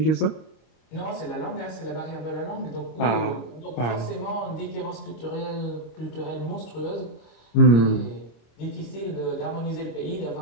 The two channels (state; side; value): late; right; 26 ms